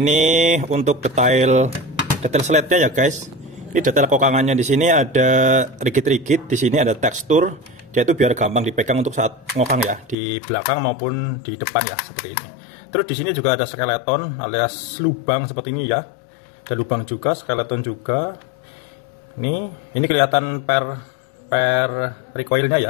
untuk detail slide-nya ya guys. Ini detail kokangannya, di sini ada rigid-rigid, di sini ada tekstur. Dia itu biar gampang dipegang untuk saat ngokang ya, di belakang maupun di depan ya, seperti ini. Terus di sini juga ada skeleton alias lubang seperti ini ya. Ada lubang juga, skeleton juga. Ini kelihatan per recoilnya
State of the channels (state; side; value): drops out; right; at 10.2 s